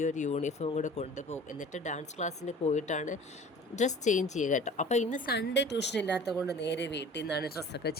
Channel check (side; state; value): both; normal; correlation 0.44